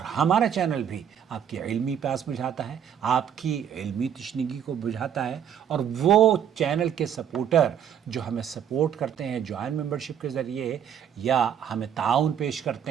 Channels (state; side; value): quieter; left; 9.0 dB